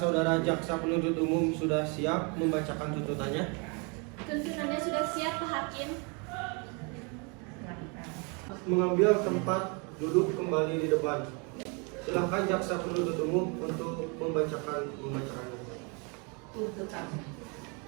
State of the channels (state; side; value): quieter; left; 33.0 dB